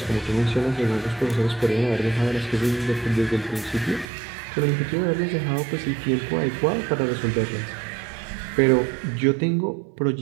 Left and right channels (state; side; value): drops out; left; at 4.0 s